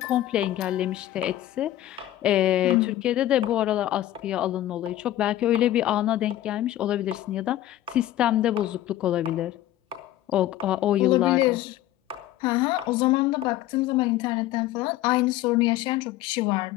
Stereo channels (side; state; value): right; quieter; 13.9 dB